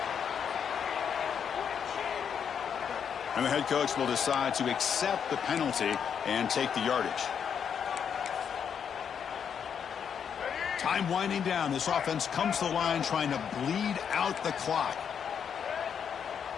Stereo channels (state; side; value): quieter; right; 7.6 dB